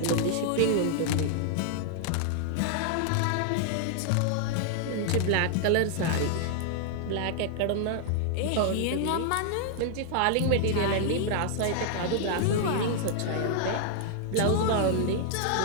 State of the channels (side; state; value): both; different; correlation -0.01